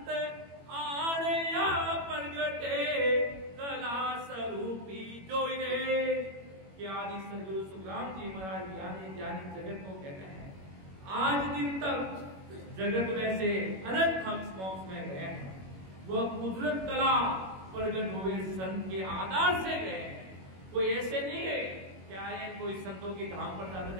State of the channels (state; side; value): late; left; 21 ms